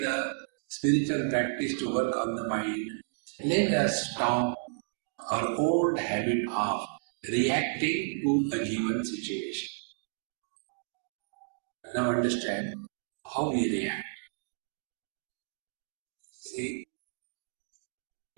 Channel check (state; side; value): silent; left; digital silence